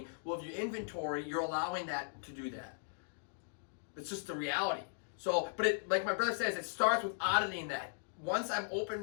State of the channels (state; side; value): silent; right; digital silence